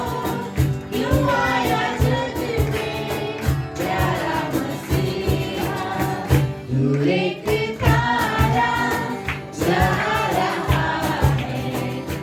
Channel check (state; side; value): identical; both; correlation 1.00